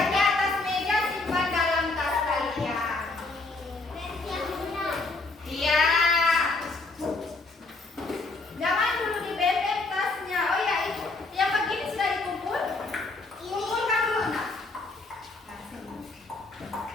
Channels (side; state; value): right; quieter; 3.4 dB